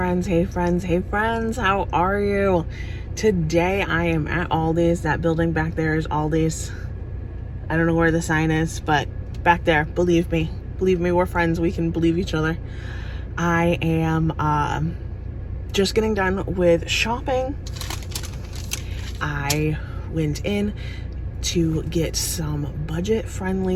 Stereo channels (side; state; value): both; identical; correlation 1.00